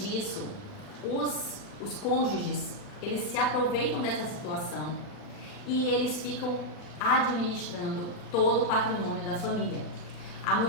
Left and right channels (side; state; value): right; late; 40 ms